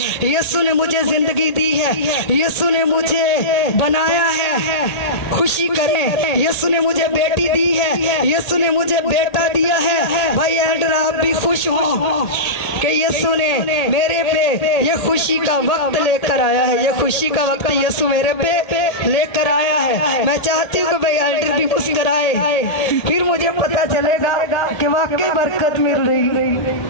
यीशु ने मुझे जिंदगी दी है, यीशु ने मुझे बनाया है। खुशी करें, यीशु ने मुझे बेटी दी है, यीशु ने मुझे बेटा दिया है। भाई एल्डर आप भी खुश हो कि यीशु ने मेरे पे ये खुशी का वक्त लेकर आया है। ये खुशी का वक्त यीशु मेरे पे लेकर आया है। मैं चाहती हूँ कि भाई एल्डर भी मुस्कुराए, फिर मुझे पता चलेगा कि वाकई बरकत मिल रही।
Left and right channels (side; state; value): right; late; 1.8 ms